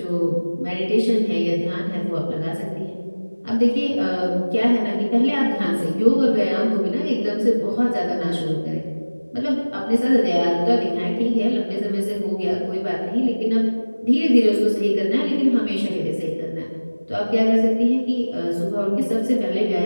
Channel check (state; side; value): inverted; both; correlation -1.00